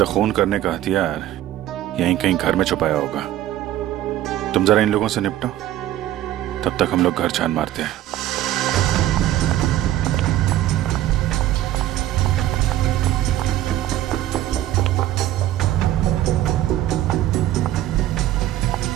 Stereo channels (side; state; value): left; quieter; 13.4 dB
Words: खून करने का हथियार यहीं कहीं घर में छुपाया होगा। तुम जरा इन लोगों से निपटो, तब तक हम लोग घर छान मारते हैं।